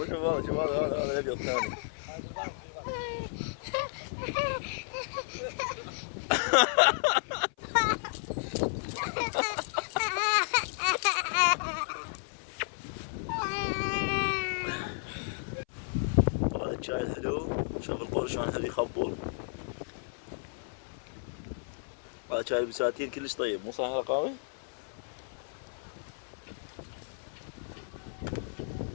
شوف هذا الابيض الثاني. هذا الشاي الحلو. شوف القول شلون حلو يخبل. هذا شاي البساتين كلش طيب مو صحيح رقاوي؟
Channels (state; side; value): silent; right; 56 dB below the other